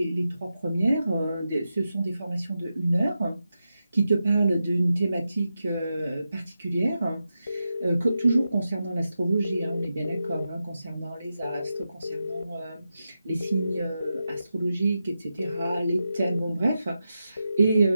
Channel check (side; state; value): both; inverted; correlation -0.89